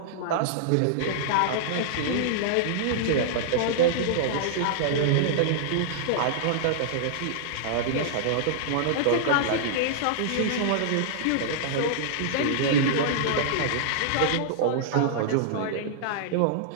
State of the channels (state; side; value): different; both; correlation -0.01